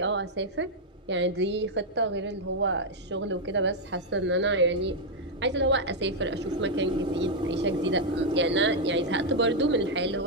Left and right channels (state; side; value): normal; both; correlation -0.02